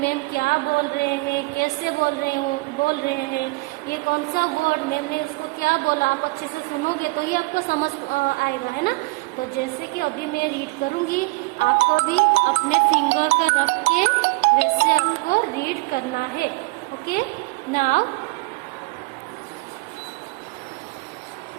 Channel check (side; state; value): left; quieter; 25.7 dB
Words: क्या बोल रहे हैं, कैसे बोल रहे हैं, ये कौन सा वर्ड मैम ने उसको क्या बोला, आप अच्छे से सुनोगे तो ही आपको समझ आएगा, है ना। तो जैसे कि अभी मैं रीड करूंगी, आपको भी अपने फिंगर का रख के वैसे आपको रीड करना है। Okay, now